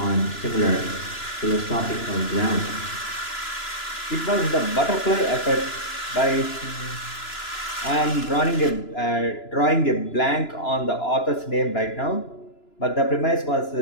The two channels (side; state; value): right; late; 2.9 ms